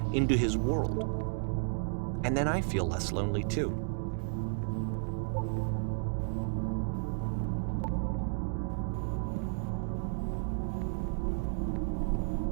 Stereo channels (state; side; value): silent; left; digital silence